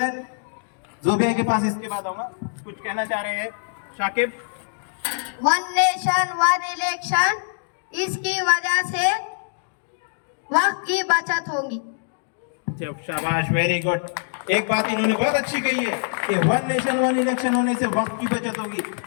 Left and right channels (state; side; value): silent; right; digital silence